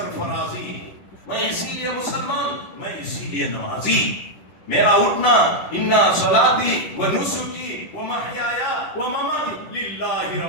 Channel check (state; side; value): late; right; 9.9 ms